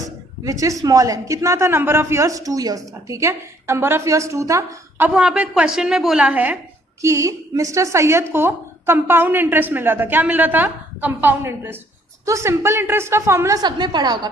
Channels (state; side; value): normal; both; correlation 0.64